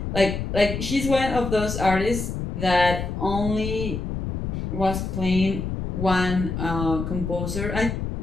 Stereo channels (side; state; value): left; noise; rumble, 4 dB below the sound